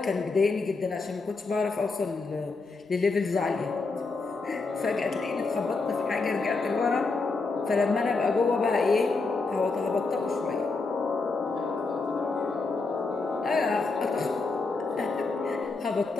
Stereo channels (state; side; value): quieter; right; 3.9 dB